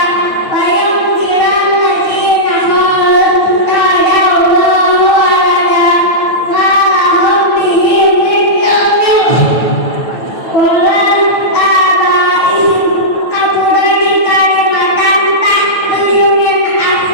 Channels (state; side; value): late; right; 9.0 ms